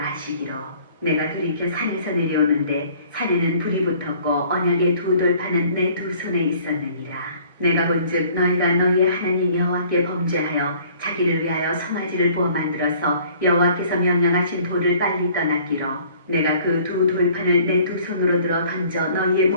내가 돌이켜 산에서 내려오는데 산에는 불이 붙었고 언약의 두 돌판은 내 두 손에 있었느니라. 내가 본즉 너희가 너희의 하나님 여호와께 범죄하여 자기를 위하여 송아지를 부어 만들어서 여호와께서 명령하신 돌을 빨리 떠났기로 내가 그 두 돌판을 내 두 손으로 들어 던져 너희의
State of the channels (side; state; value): both; inverted; correlation -0.55